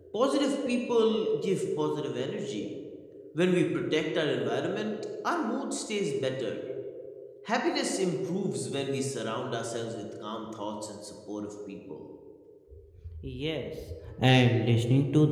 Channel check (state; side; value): identical; both; correlation 1.00